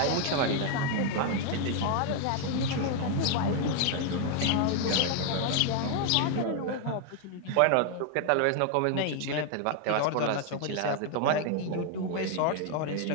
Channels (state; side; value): different; both; correlation 0.00